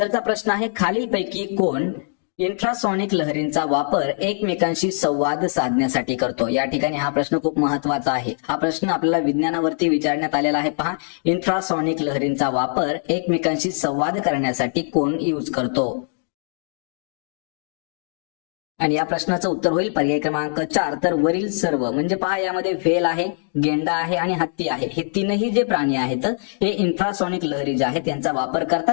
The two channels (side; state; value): right; silent; digital silence